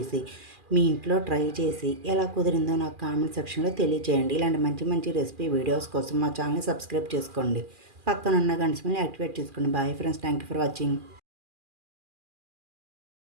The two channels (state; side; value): late; left; 2.4 ms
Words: మీ ఇంట్లో ట్రై చేసి ఎలా కుదిరిందో నాకు కామెంట్ సెక్షన్లో తెలియజేయండి. ఇలాంటి మంచి మంచి రెసిపీ వీడియోస్ కోసం మా ఛానల్ని సబ్స్క్రైబ్ చేసుకోండి. పక్కనున్న గంట సింబల్ని యాక్టివేట్ చేసుకోండి. Bye friends, thank you for watching.